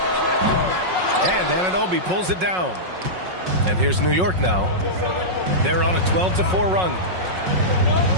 And Anunoby pulls it down. And here's New York now. They're on a 12-4 run.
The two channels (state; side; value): late; left; 5.5 ms